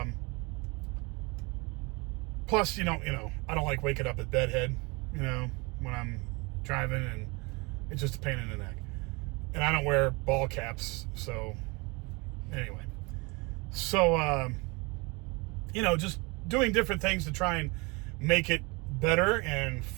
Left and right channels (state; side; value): quieter; left; 27.8 dB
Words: Plus, I don't like waking up at bedhead, when I'm driving, and it's just a pain in the neck. And I don't wear ball caps, so anyway. So, just doing different things to try and make it better and